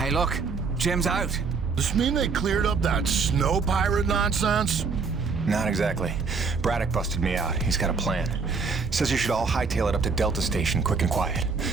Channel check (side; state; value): left; quieter; 4.8 dB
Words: look. Jim's out. Does this mean they cleared up that snow pirate nonsense? Not exactly. Braddock busted me out. He's got a plan. Says you should all hightail it up to Delta Station, quick and quiet.